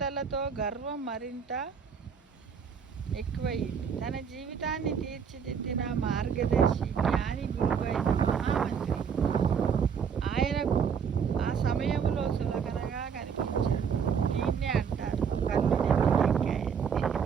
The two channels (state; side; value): quieter; left; 6.9 dB